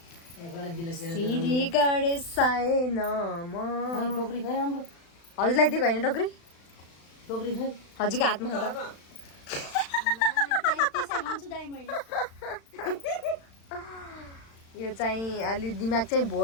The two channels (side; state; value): right; late; 35 ms